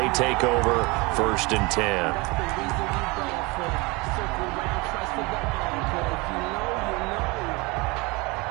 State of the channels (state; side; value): quieter; left; 25.7 dB